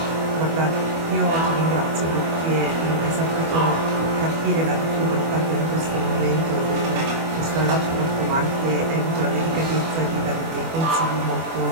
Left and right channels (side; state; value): left; late; 24 ms